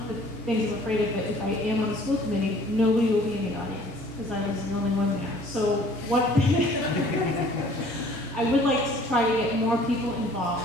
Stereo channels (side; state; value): both; normal; correlation 0.53